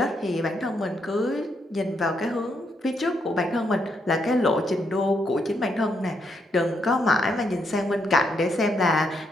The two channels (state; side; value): normal; both; correlation 0.77